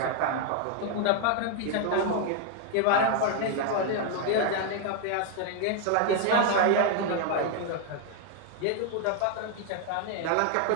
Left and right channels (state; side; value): different; both; correlation 0.00